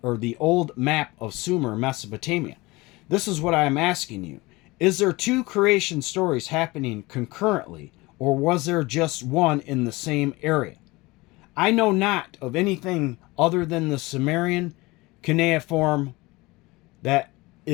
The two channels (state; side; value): quieter; right; 22.3 dB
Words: or the old map of Sumer, Mesopotamia. This is what I am asking you. Is there two creation stories happening concurrently, or was there just one in the same area? I know not of anything other than the Sumerian cuneiform that